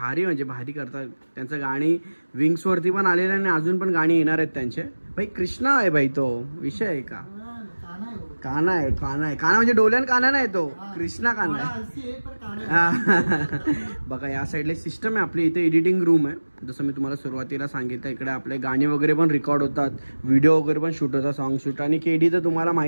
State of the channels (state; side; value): inverted; both; correlation -1.00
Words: म्हणजे भारी करतात. त्यांचं गाणी विंग्स वरती पण आलेलं आहे आणि अजून पण गाणी येणार आहेत त्यांचे. भाई कृष्णा आहे भाई, तो विषय आहे का? काना आहे म्हणजे डोल्यान काना नाही, तो कृष्णा काना आहे. बघा या साईडला सिस्टम आहे आपली. इथे एडिटिंग रूम आहे, जसं मी तुम्हाला सुरुवातीला सांगितलं. इकडे आपले गाणी वगैरे पण रेकॉर्ड होतात, व्हिडिओ वगैरे पण शूट होतात, सॉन्ग शूट. आणि केडी तर तुम्हाला